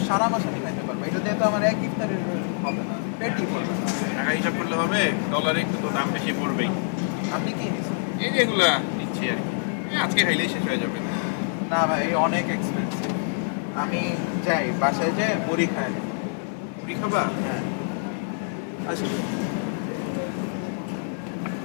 সারা মাস আমি খাইতে পারবো। এটা দিয়ে তো আমার এক ইফতারের হবে না, পেটই ভরবে না। টাকা হিসাব করলে হবে, ডলারে একটু তো দাম বেশি পড়বেই। আপনি কি নিচ্ছেন? এই যেগুলা নিচ্ছি আর কি, আজকে খাইলেই শেষ হয়ে যাবে। না ভাই এই অনেক এক্সপেন্সিভ। আমি যাই বাসায় যাই মুড়ি খাই। মুড়ি খাবা? হ্যাঁ আসি।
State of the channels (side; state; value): right; silent; digital silence